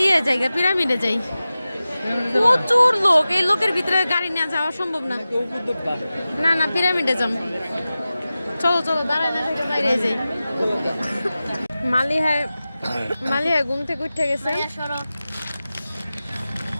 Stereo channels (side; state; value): both; inverted; correlation -0.95